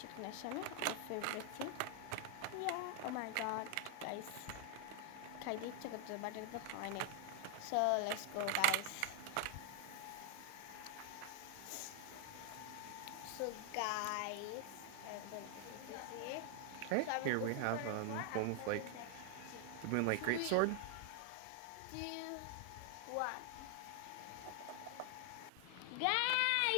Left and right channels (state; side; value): different; both; correlation 0.00